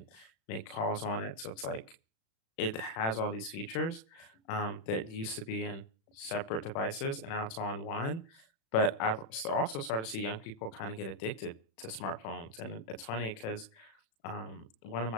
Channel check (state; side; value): late; right; 36 ms